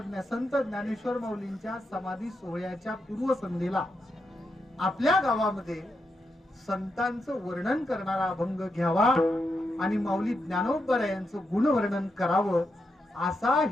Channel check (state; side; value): normal; both; correlation 0.84